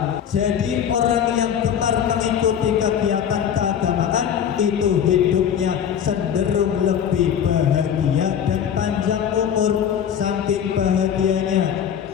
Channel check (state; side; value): quieter; right; 8.7 dB